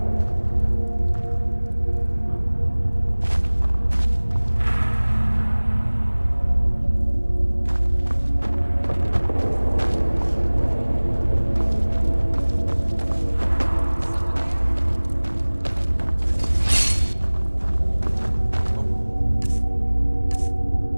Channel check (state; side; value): inverted; both; correlation -1.00